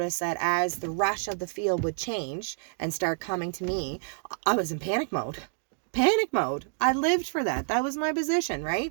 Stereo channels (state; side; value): silent; left; digital silence